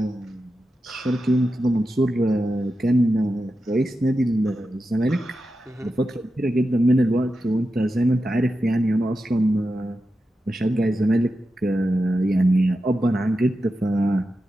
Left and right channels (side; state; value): both; normal; correlation 0.90